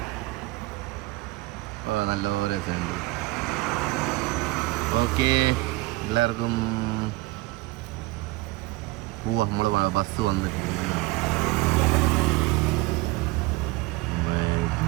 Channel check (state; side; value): quieter; left; 21.0 dB